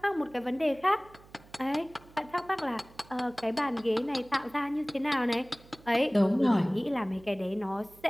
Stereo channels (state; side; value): noise; right; hum, 24 dB below the sound